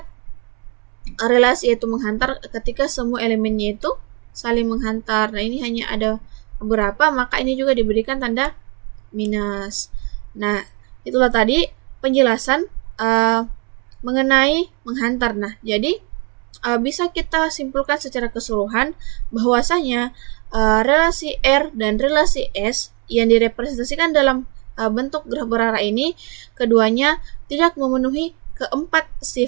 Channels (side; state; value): left; quieter; 33.0 dB